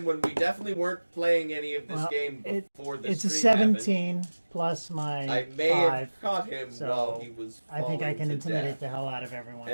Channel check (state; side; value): inverted; both; correlation -1.00